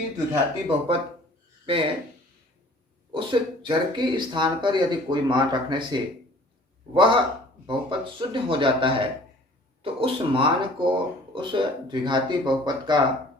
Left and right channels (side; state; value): both; normal; correlation 0.50